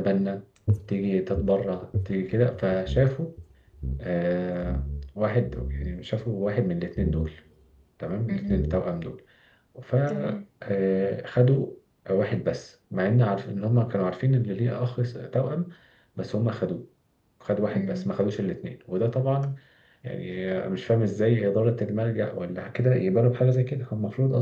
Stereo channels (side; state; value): both; identical; correlation 1.00